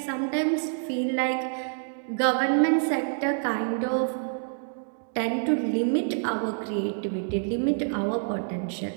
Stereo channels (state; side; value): silent; left; digital silence